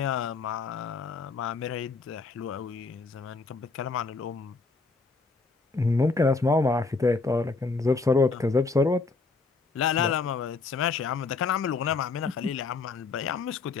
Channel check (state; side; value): quieter; right; 4.1 dB